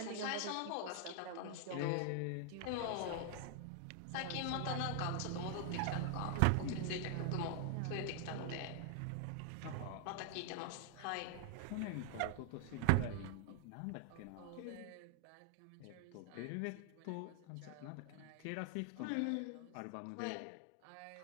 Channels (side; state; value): both; different; correlation 0.00